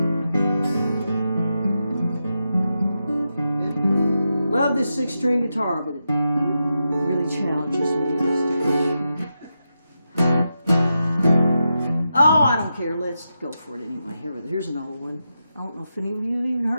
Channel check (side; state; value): both; inverted; correlation -0.88